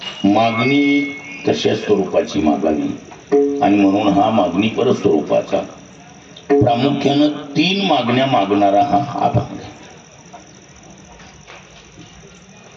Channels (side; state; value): both; identical; correlation 1.00